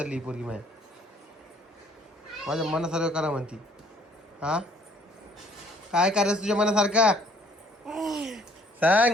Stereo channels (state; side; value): normal; both; correlation 0.60